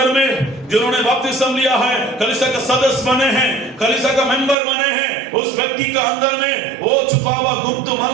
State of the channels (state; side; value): drops out; left; at 4.5 s